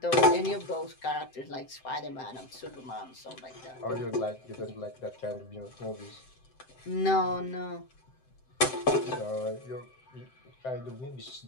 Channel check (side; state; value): right; late; 7.7 ms